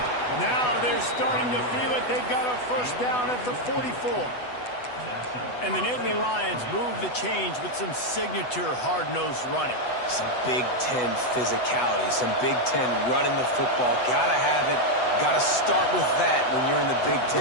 Now they're starting to feel it. They've got a first down at the 44. And the Nittany Lions move the change with some signature hard-nosed running. Some Big Ten physicality, some Big Ten running the football. Gotta have it. Gotta start with that when you're in the Big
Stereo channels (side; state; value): right; late; 8.1 ms